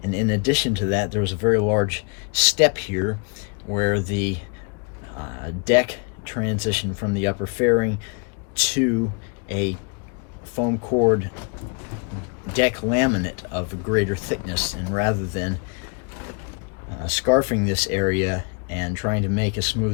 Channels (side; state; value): right; quieter; 36.9 dB